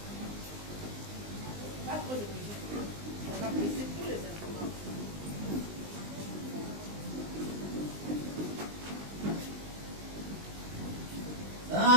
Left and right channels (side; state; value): left; late; 20 ms